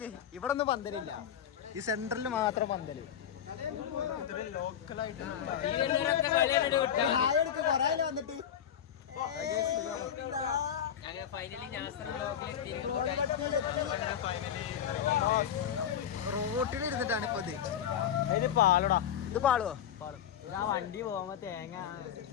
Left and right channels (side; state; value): right; quieter; 9.3 dB